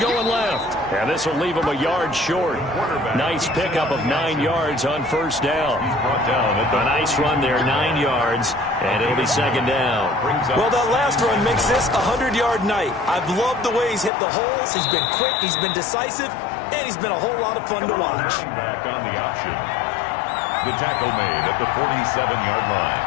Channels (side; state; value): right; drops out; at 14.1 s